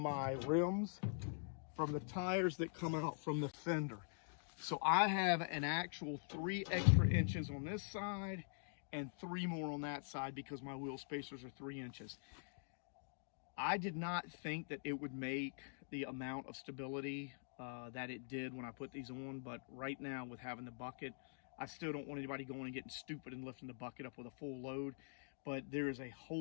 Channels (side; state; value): right; silent; digital silence